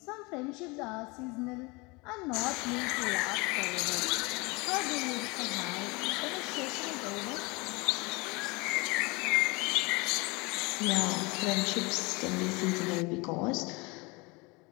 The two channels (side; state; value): right; quieter; 26.2 dB